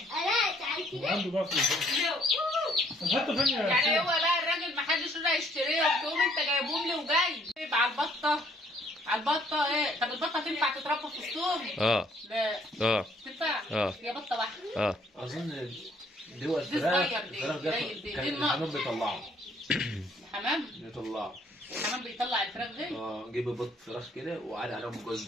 تعال كده. وعنده بقى في حتى فين يا يعني هو حسين؟ بقى الراجل ما حدش رضى يشتريهم، تقوم انت جايبهم لي وجاي يبقى على البطه. على البطه ايه؟ طب البطه تنفع تتربى في الصوم؟ لا تنفع. هي بطه واحده. اظن دول دي فراخ صغير دي، الفراخ قليل دي. كان دي الحمام النقط. بيطلعها. الحمام الحمام بيطلع الفراخ دي. جيب بط فراخ كده وقعد عليهم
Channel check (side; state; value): both; normal; correlation 0.64